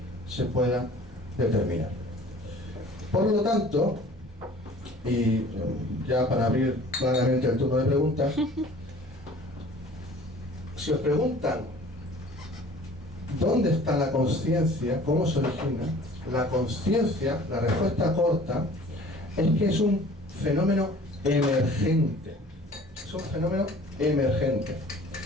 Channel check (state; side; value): noise; right; hum, 26 dB below the sound